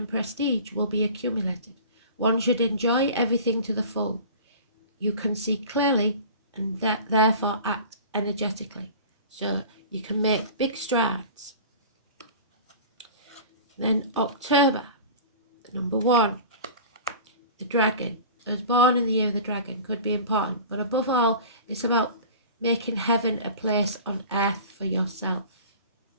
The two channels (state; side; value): inverted; both; correlation -0.38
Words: prestige will be accumulated. One should enjoy everything to the full. You can see clearly and therefore act energetically. So you can make big strides. Then October, number 1, the dragon. I was born in the year of the dragon, could be important. But above all, it's about making heaven a place on earth for yourself.